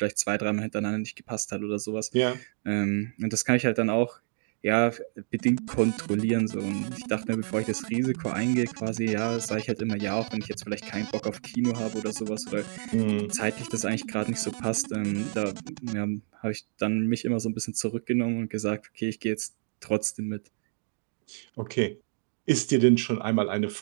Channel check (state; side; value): silent; left; digital silence